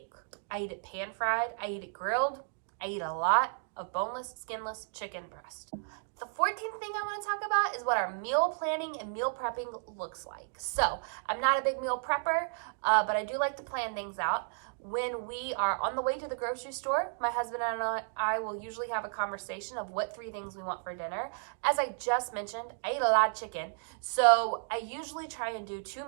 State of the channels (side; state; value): left; silent; digital silence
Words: I eat it pan fried. I eat it grilled. I eat a lot of boneless, skinless chicken breast. The 14th thing I want to talk about is what our meal planning and meal prepping looks like. So I'm not a big meal prepper, but I do like to plan things out. When we are on the way to the grocery store, my husband and I will usually have a conversation of what 3 things we want for dinner. As I just mentioned, I eat a lot of chicken. So I usually try and do 2